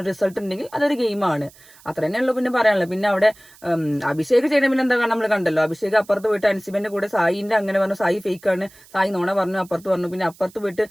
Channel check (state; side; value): noise; right; hiss, 25 dB below the sound